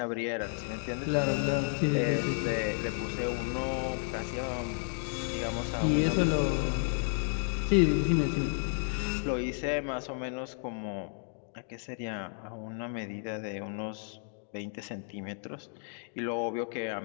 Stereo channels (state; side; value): silent; right; 56 dB below the other